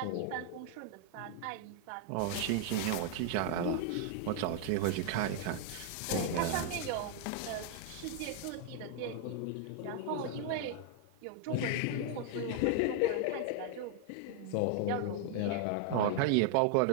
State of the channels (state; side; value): different; both; correlation 0.00